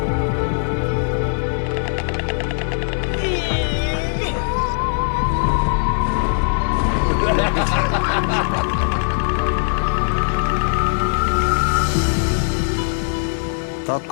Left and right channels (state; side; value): silent; right; digital silence